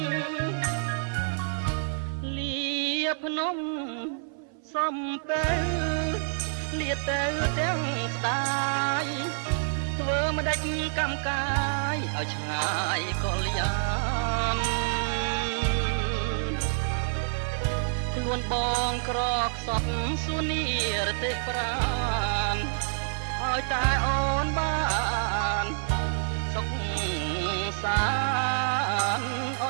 លាភ្នំសំពេលលាទៅទាំងស្ដាយធ្វើមិនដាច់កម្មកាយឲ្យឆ្ងាយកលយានខ្លួនបងក្រខ្សត់សួននីរទេប្រានឲ្យតែអូនបានសុខសានអ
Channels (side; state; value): left; silent; 59 dB below the other